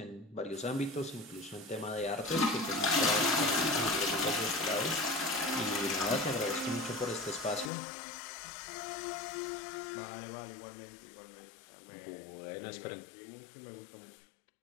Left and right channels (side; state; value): right; drops out; at 7.7 s